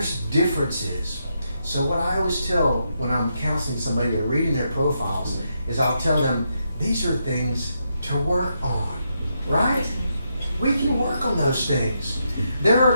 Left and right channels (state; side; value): inverted; both; correlation -0.81